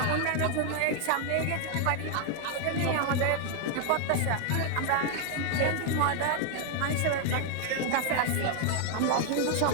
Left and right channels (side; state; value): both; different; correlation 0.00